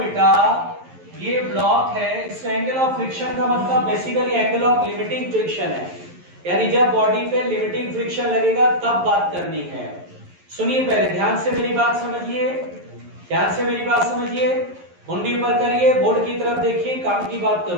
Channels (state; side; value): late; left; 11 ms